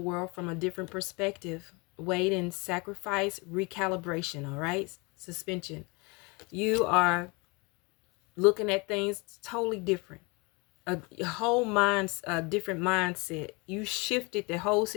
from a different perspective. Wait and sacrifice, recalibration, all right? Suspension. You are looking at things totally different. A whole different mindset. You shifted the whole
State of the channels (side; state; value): right; quieter; 28.6 dB